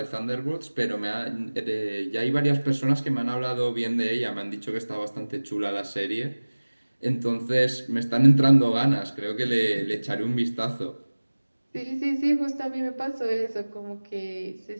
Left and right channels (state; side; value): inverted; both; correlation -1.00